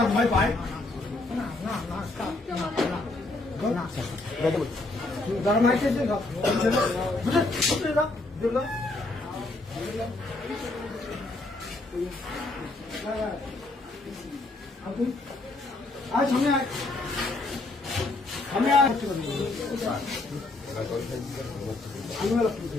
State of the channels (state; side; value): quieter; right; 3.0 dB